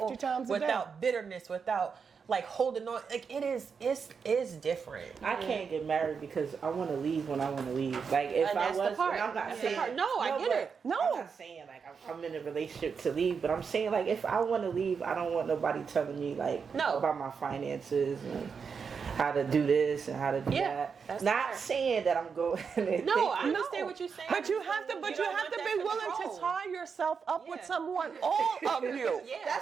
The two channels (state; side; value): quieter; left; 5.9 dB